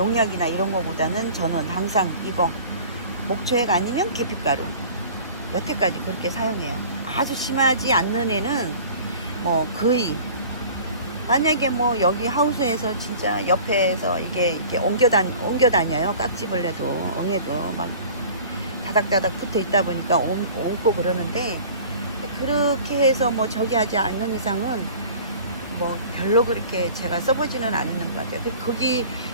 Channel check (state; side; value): inverted; both; correlation -0.44